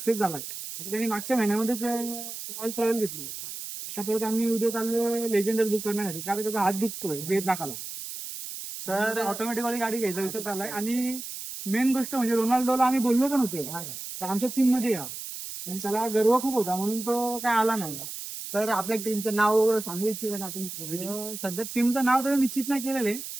झाला. त्यांनी मागच्या महिन्यामध्येच रॉयल्स रॉयल घेतली. त्यासोबत आम्ही उद्या चाललो लेजेंडर बुक करण्यासाठी, कारण त्याचा हात दुखतोय वेद नाकाला. तर ऑटोमॅटिकली गाडी घ्यायचा विचार चाललाय. आणि मेन गोष्ट म्हणजे रोनाल्डोला आम्ही बोललो पण होतो तर आमच्या टीम मध्ये या, आणि त्याला गर्व खूप होता म्हणून तो काय आला नाही. तर आपल्या टीमचं नाव सांगू इच्छित आपण? सध्या टीमचं नाव तर निश्चित नाही केलेलं आहे.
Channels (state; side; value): noise; right; hiss, 9 dB below the sound